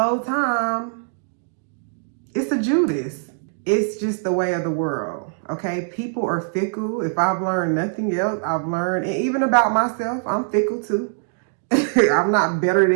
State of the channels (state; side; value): silent; left; digital silence